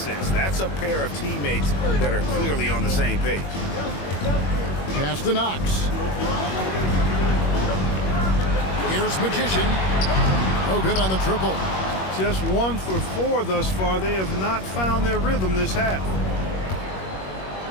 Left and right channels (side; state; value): right; late; 21 ms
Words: That's a pair of teammates that are clearly on the same page. Pass to Knox. Here's Magician. No good on the triple. Just 1 for 4 thus far. They have not found their rhythm this half.